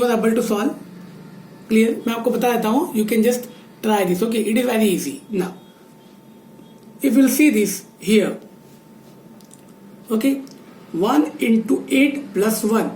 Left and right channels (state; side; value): identical; both; correlation 1.00